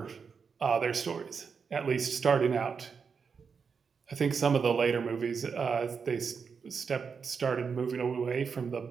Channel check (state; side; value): quieter; left; 5.8 dB